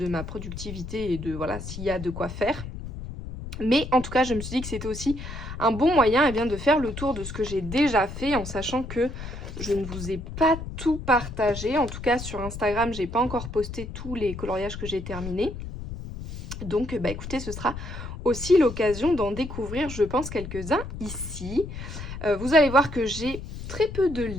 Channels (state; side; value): noise; left; rumble, 9 dB below the sound